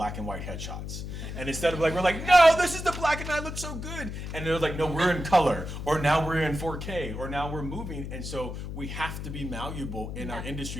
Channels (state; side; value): noise; left; hum, 7 dB below the sound